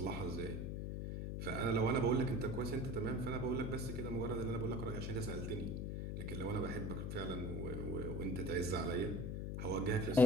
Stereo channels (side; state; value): left; noise; hum, 2 dB below the sound